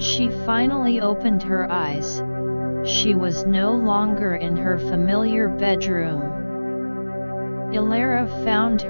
finally opened her eyes, she was no longer in her familiar bedroom. Elara found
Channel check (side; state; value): both; inverted; correlation -1.00